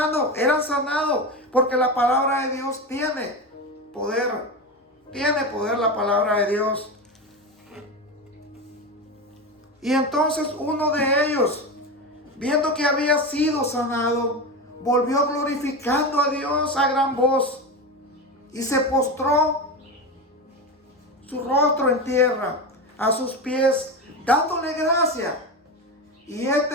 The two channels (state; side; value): normal; both; correlation 0.21